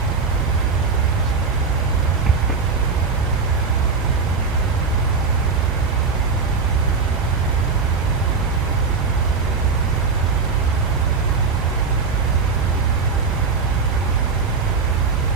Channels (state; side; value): quieter; left; 4.9 dB